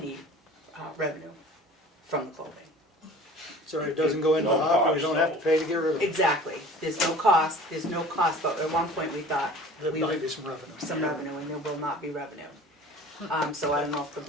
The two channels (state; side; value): normal; both; correlation 0.44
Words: revenue from the clothing. So it doesn't go into the No hopper, we cost, don't have to pay to get rid of it. Exactly. There's no cost, but at one point we thought There we might would be some revenue. some revenue, and there will not be revenue. So I don't know if the